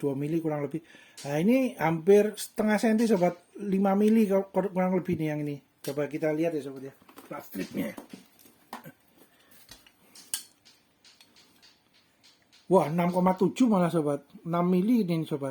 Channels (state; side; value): identical; both; correlation 1.00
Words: mili kurang lebih. Nah ini hampir setengah senti sobat, 5 mili kurang lebih nih yang ini. Coba kita lihat ya sobat ya, plat stripnya. Wah 6,7 malah sobat, 6 mili ini